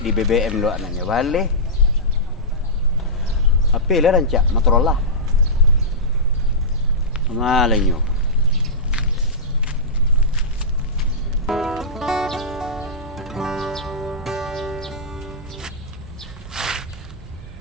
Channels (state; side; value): normal; both; correlation -0.16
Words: BBM lo anaknya balik. Apa lah rancak Motorola. Malanyo.